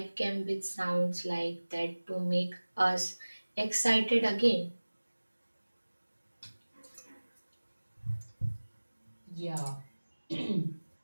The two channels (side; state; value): both; inverted; correlation -1.00